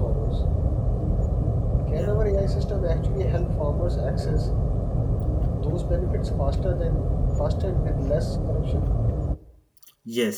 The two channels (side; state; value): both; identical; correlation 1.00